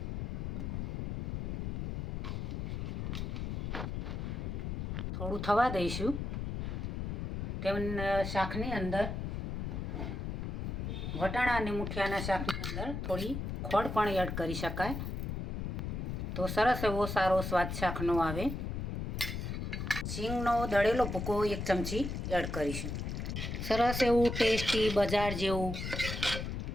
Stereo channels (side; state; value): left; noise; rumble, 3 dB below the sound